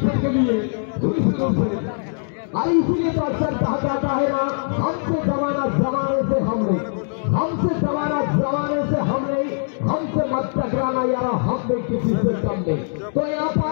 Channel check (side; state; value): right; silent; digital silence